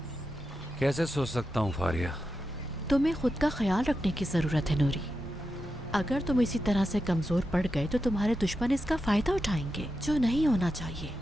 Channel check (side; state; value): both; normal; correlation 0.89